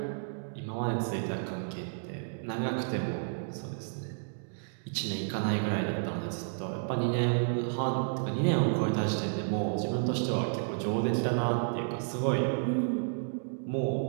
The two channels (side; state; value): left; silent; digital silence